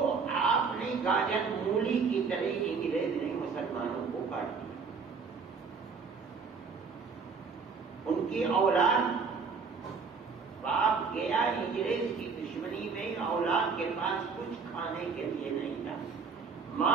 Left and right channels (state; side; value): quieter; left; 5.3 dB